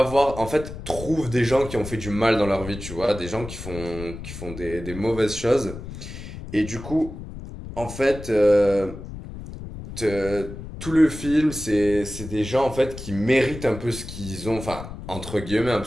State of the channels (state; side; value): noise; left; rumble, 11 dB below the sound